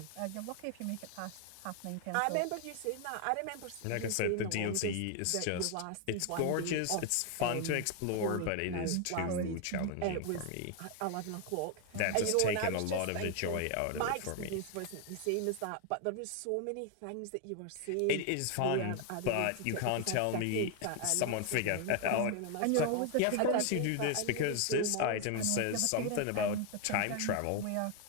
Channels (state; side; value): different; both; correlation 0.01